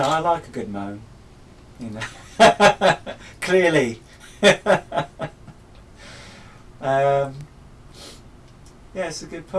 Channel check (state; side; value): identical; both; correlation 1.00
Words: I like a good moan, you know. Clearly. Yeah, it's a good